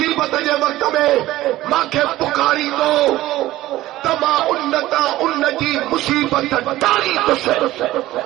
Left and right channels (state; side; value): quieter; left; 16.0 dB